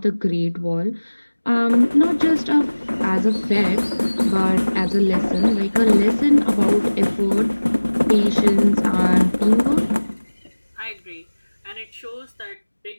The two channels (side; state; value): both; inverted; correlation -1.00